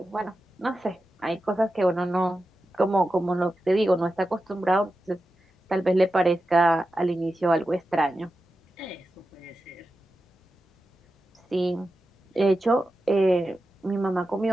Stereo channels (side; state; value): both; normal; correlation 0.91